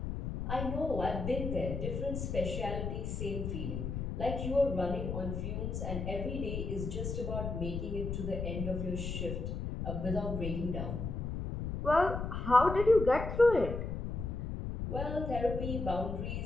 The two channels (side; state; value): left; noise; rumble, 4 dB below the sound